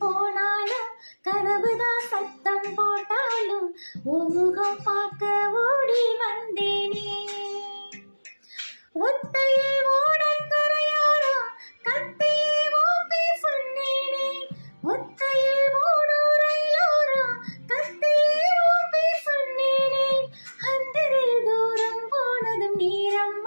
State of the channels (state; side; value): inverted; both; correlation -1.00